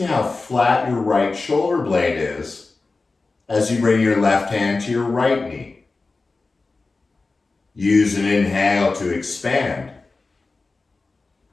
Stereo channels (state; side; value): quieter; right; 3.7 dB